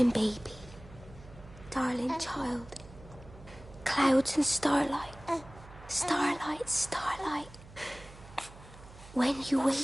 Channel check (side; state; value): right; noise; hum, 19 dB below the sound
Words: baby. Darling child. Clouds and starlight. Starlight, starlight. When you